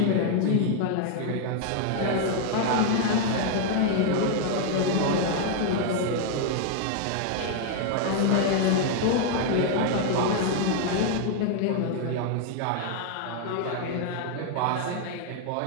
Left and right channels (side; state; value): both; different; correlation 0.00